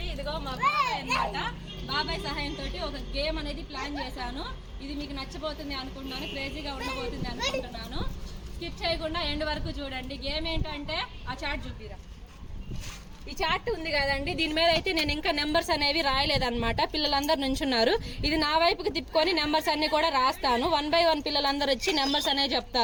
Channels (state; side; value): identical; both; correlation 1.00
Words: ఇదిగో మా బాబాయ్ అనమాట, బాబాయ్ సహాయంతో ఒక గేమ్ అనేది ప్లాన్ చేశాను. ఇది మీకు నచ్చబోతుంది అనుకుంటున్నాను, క్రేజీగా ఉండబోతుంది అనుకుంటున్నాను. స్కిప్ చేయకుండా ఎండ్ వరకు చూడండి. గేమ్ ఏంటంటే ఆ చార్ట్ చూపిరా. ఈ చార్ట్ ఉంది కదండి, దీని మీద అయితే నేను ఇంకా నెంబర్స్ అనేవి రాయలేదన్నమాట. పిల్లలందరూ నుంచున్నారు. ఇది నా వైపుకి తిప్పుకొని నెంబర్స్ అన్ని కూడా రాస్తాను. 1 by 1 పిల్లలందరూ వచ్చి నెంబర్స్ అనేవి